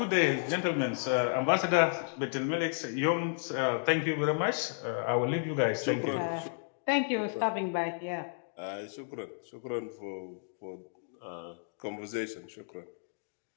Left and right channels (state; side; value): silent; right; digital silence